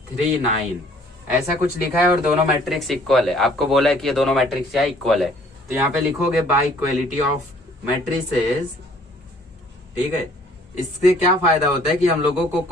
ऐसा कुछ लिखा है और दोनों मैट्रिक्स इक्वल है। आपको बोला है कि ये दोनों मैट्रिक्स क्या इक्वल है, तो यहाँ पे लिखोगे बाय इक्वलिटी ऑफ मैट्रिसेस। ठीक है, इससे क्या फायदा होता है कि हम लोगों को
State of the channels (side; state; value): both; normal; correlation 0.58